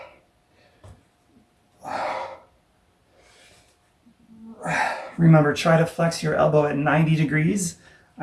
Remember, try to flex your elbow at 90 degrees.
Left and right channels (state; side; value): identical; both; correlation 1.00